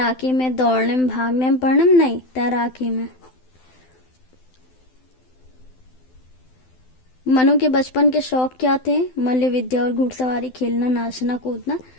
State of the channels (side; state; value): right; late; 12 ms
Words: में, दौड़ने में, भागने में, पढ़ने में? नहीं, तैराकी में। मनु के बचपन के शौक क्या थे? मल्ल विद्या और घुड़सवारी, खेलना, नाचना, कूदना।